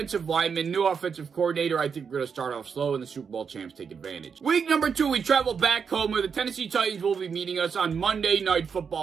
lineman, new offensive coordinator, I think we're going to start off slow and the Super Bowl champs take advantage. Week number 2, we travel back home where the Tennessee Titans will be meeting us on Monday Night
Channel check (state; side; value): quieter; left; 6.3 dB